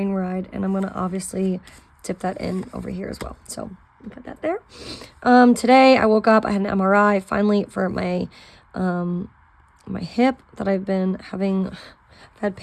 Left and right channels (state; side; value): identical; both; correlation 1.00